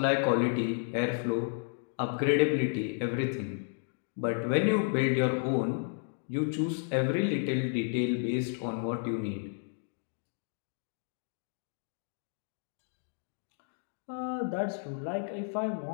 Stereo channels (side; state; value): right; silent; 56 dB below the other